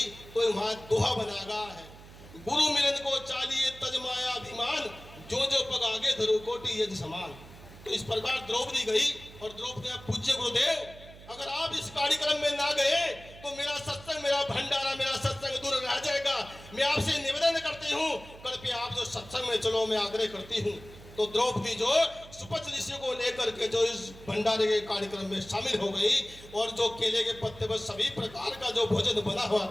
तो वहां दोहा बनाया है, गुरु मिलन को चालिए तजमाया अभिमान, जो जो पग आगे धरो कोटि यज्ञ समान। तो इस प्रकार द्रौपदी गई और द्रौपदी ने पूज्य गुरुदेव, अगर आप इस कार्यक्रम में ना गए तो मेरा सत्संग, मेरा भंडारा, मेरा सत्संग दूर रह जाएगा। मैं आपसे निवेदन करती हूँ, कृपया आप जो सत्संग में चलो, मैं आग्रह करती हूँ। तो द्रौपदी जो सुपच्छ ऋषि को लेकर के जो इस भंडारे के कार्यक्रम में शामिल हो गई और जो केले के पत्ते पर सभी प्रकार का जो भोजन बना हुआ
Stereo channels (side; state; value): right; noise; hum, 18 dB below the sound